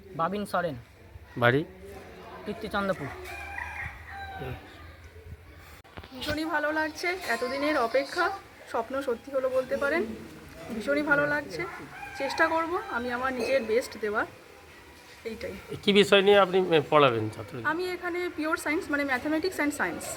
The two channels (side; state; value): both; identical; correlation 1.00